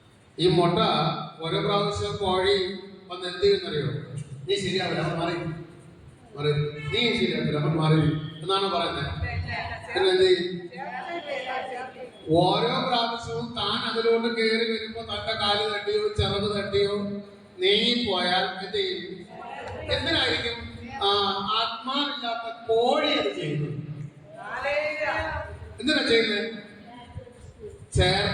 ഈ മുട്ട ഓരോ പ്രാവശ്യം കോഴി വന്ന് എന്ത് ചെയ്യുന്നറിയോ? നീ ശരിയാവില്ല, അവൻ മാറി മാറി, നീ ശരിയാവില്ല, അവൻ മാറി എന്നാണ് പറയുന്നത്. പിന്നെ എന്ത് ചെയ്യും? ഓരോ പ്രാവശ്യവും താൻ അതിലോട്ട് കയറി വരുമ്പോ തന്റെ കാല് തട്ടിയോ ചിറക് തട്ടിയോ നീങ്ങിപ്പോയാൽ എന്ത് ചെയ്യും? എന്തിനായിരിക്കും? ആത്മാവില്ലാത്ത കോഴി അത് ചെയ്യുന്നത്. എന്തിനാ ചെയ്യുന്നത്?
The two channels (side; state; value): both; identical; correlation 1.00